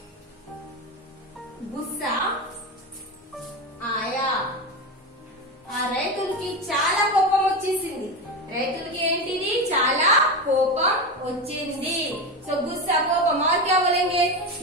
गुस्सा आया। రైతులకి చాలా కోపం వచ్చేసింది। రైతులకి ఏంటిది? చాలా కోపం వచ్చింది। गुस्सा, कोपम। और क्या बोलेंगे?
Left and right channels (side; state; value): both; normal; correlation 0.19